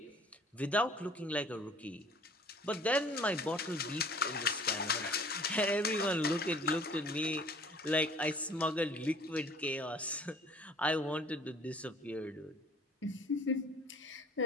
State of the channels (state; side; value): normal; both; correlation 0.52